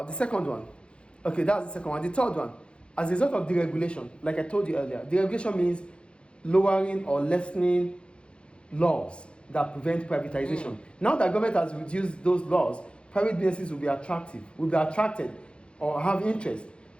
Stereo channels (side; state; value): right; late; 0.056 ms